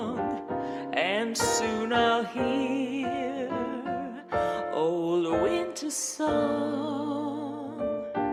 and soon I'll hear old winter song.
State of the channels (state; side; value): identical; both; correlation 1.00